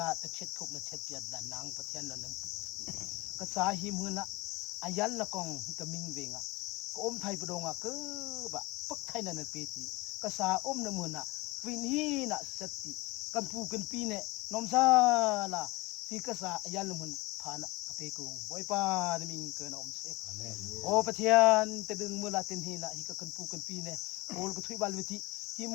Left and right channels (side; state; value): right; quieter; 22.5 dB